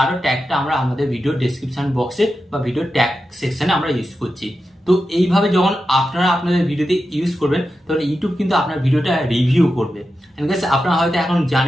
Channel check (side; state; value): both; normal; correlation 0.90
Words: ট্যাগটা আমরা আমাদের ভিডিও ডেসক্রিপশন বক্সে বা ভিডিও ট্যাগ সেকশনে আমরা ইউজ করছি। তো এইভাবে যখন আপনারা আপনাদের ভিডিওতে ইউজ করবেন তখন ইউটিউব কিন্তু আপনার ভিডিওটা রিভিউ করবে। আপনারা হয়তো এখন